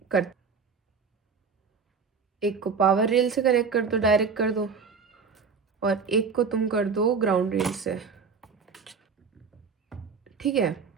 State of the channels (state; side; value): quieter; left; 5.5 dB